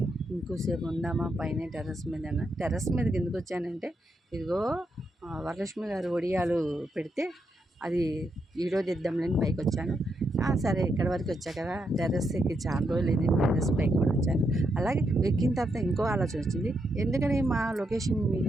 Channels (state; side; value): normal; both; correlation 0.81